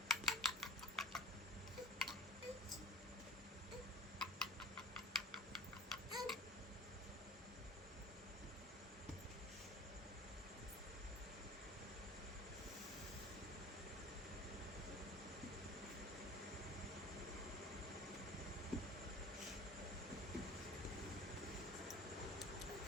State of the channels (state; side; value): normal; both; correlation 0.41